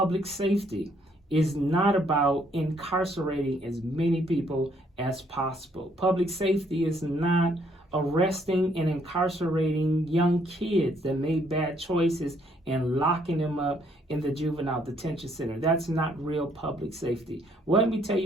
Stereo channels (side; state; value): both; normal; correlation 0.68